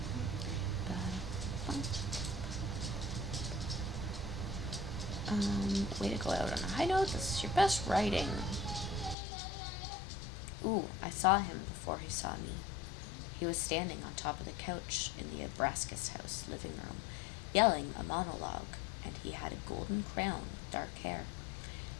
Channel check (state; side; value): drops out; right; at 9.2 s